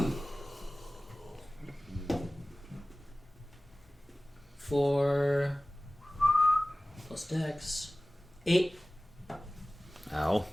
For plus dex 8, Ow.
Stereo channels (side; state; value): both; normal; correlation 0.98